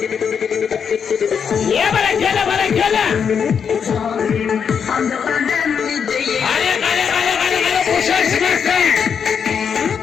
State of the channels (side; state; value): right; quieter; 6.9 dB